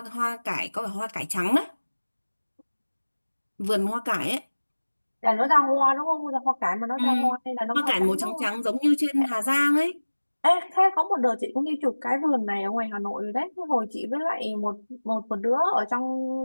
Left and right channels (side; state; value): both; inverted; correlation -1.00